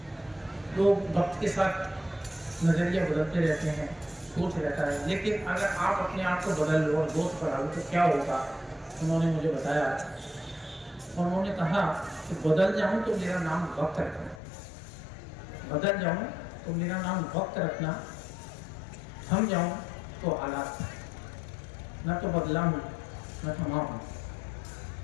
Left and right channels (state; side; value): drops out; right; at 14.4 s